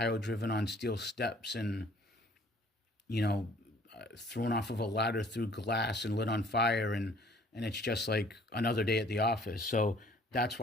driven on steel steps and, you know, thrown off of a ladder through glass and lit on fire, and it's just like another day at the office. So that's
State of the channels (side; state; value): both; normal; correlation 0.56